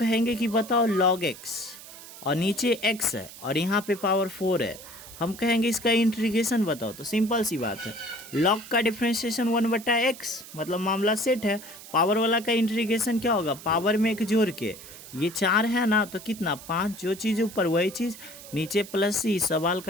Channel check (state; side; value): noise; right; hiss, 16 dB below the sound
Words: कि बताओ लॉग एक्स, और नीचे x है और यहाँ पे पावर 4 है, हम कहेंगे इसका इंटीग्रेशन बताओ, तो सिंपल सी बात है, लॉग का डिफ्रेंशिएशन 1 बटा एक्स, मतलब मामला सेट है। पावर वाला का इंटीग्रेशन क्या होगा, पावर में एक जोड़ के, ये 4 है ना तो कितना 5, जो चीज़ ऊपर वही चीज़ नीचे प्लस सी, सवाल